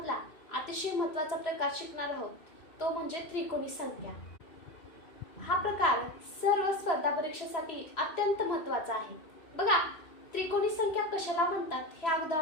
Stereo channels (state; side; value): late; right; 3.0 ms